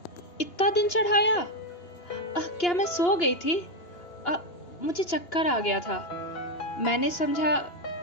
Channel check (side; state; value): right; late; 2.9 ms